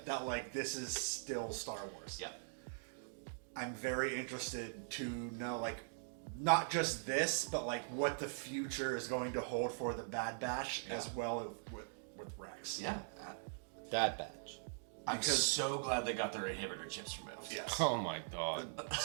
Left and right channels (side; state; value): left; silent; digital silence